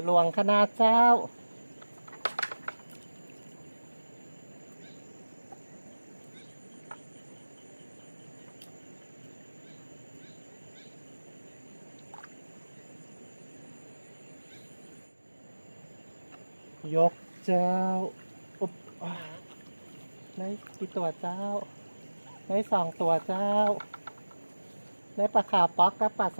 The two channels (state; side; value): inverted; both; correlation -1.00